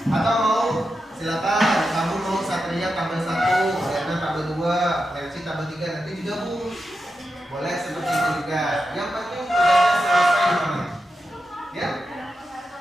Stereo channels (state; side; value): normal; both; correlation 0.89